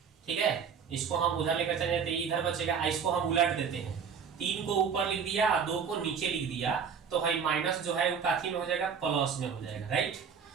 ठीक है, इसको हम उधर लेकर चले जाते, तो इधर बचेगा, इसको हम उलट देते हैं, 3 को ऊपर लिख दिया और 2 को नीचे लिख दिया, तो भाई माइनस जो है वो काथी में हो जाएगा, प्लस में हो जाएगा, राइट।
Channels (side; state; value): left; quieter; 6.6 dB